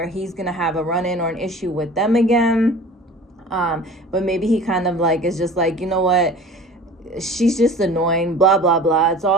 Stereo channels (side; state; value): both; normal; correlation 0.42